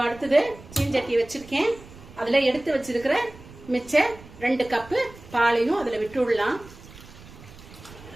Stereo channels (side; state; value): right; noise; rumble, 19 dB below the sound